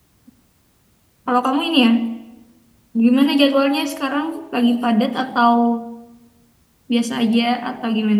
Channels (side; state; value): both; identical; correlation 1.00